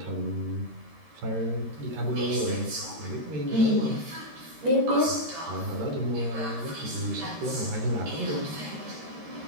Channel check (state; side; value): late; left; 13 ms